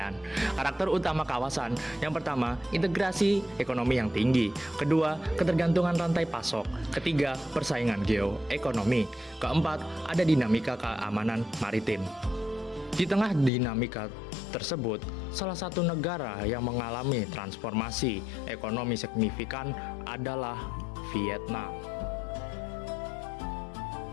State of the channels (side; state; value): right; drops out; at 13.5 s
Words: Karakter utama kawasan, yang pertama, integrasi ekonomi yang tinggi. Kedua, ketergantungan rantai pasok. Ketiga, persaingan geoekonomi. Keempat, ada dinamika keamanan maritim. Di tengah dinamika tersebut, salah satu negara yang mengalami transformasi ekonomi signifikan adalah Vietnam.